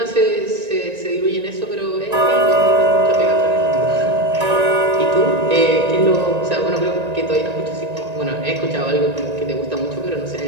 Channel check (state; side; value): late; left; 1.9 ms